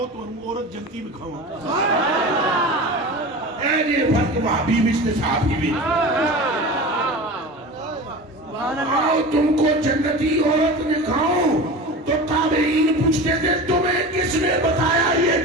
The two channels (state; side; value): normal; both; correlation 0.32